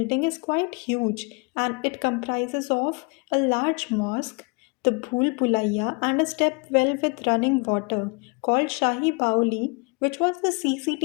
is quite huge and it comprises of a large mosque, the Bhul Bulaiya, and a step well with running water called Shahi Bauli, which was the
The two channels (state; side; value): quieter; right; 30.7 dB